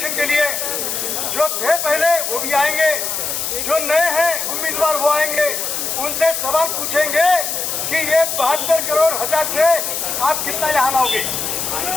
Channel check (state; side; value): noise; left; hiss, 2 dB below the sound